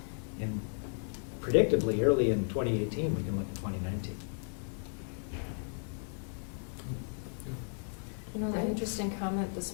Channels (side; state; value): right; silent; 55 dB below the other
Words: And predictably, early in 2018, we can look at 2019. You know, the interesting comment this